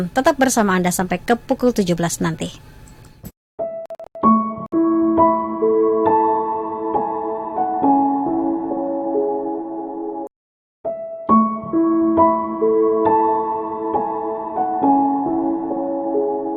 tetap bersama Anda sampai ke pukul 17 nanti.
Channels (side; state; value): both; identical; correlation 1.00